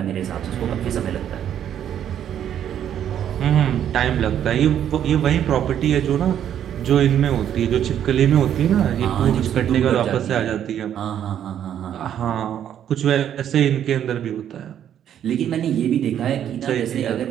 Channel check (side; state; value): left; quieter; 9.9 dB